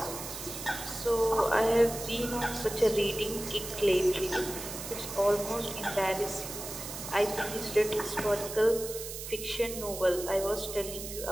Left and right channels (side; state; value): right; noise; hiss, 9 dB below the sound